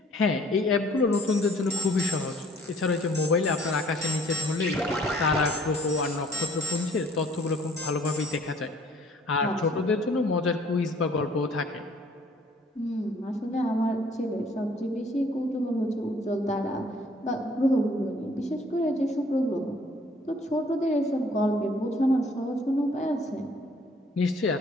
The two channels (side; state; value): both; normal; correlation 0.57